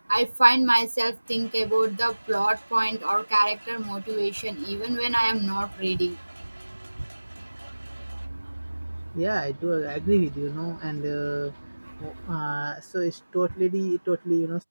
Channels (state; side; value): inverted; both; correlation -1.00